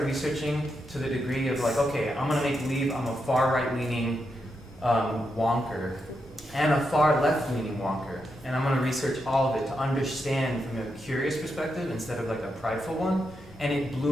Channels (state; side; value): normal; both; correlation 0.84